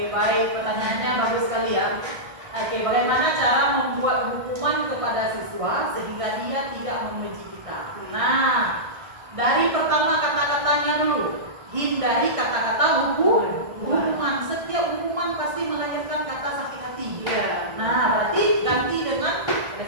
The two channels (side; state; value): left; late; 1.5 ms